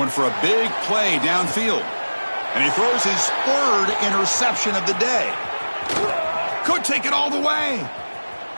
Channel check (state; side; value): inverted; both; correlation -1.00